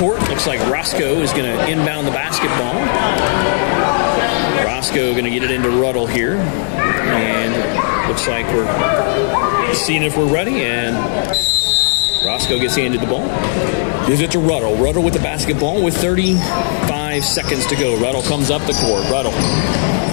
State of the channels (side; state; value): right; silent; digital silence